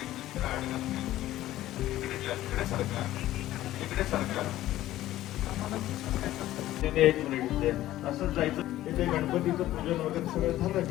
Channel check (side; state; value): right; quieter; 14.6 dB